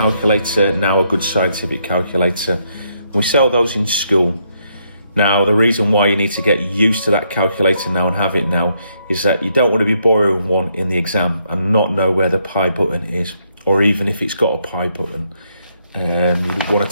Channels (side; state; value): both; inverted; correlation -0.75